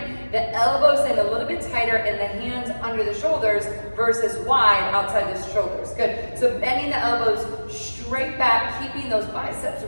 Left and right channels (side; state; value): both; inverted; correlation -1.00